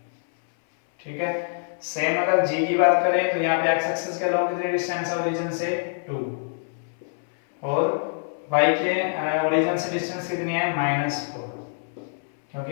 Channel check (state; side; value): silent; right; 60 dB below the other